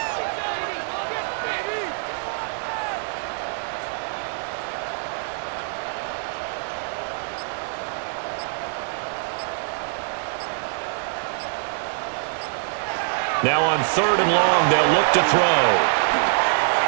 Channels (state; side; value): silent; left; digital silence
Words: Now on 3rd and long, they'll look to throw.